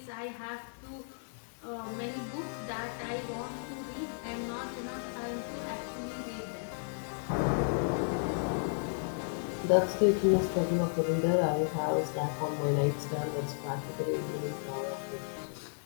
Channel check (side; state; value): right; silent; 55 dB below the other